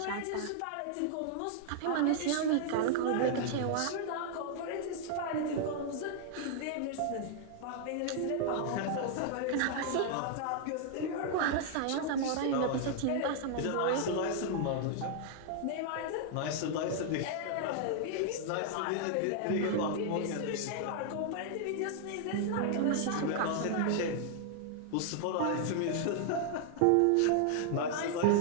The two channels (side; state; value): both; different; correlation 0.00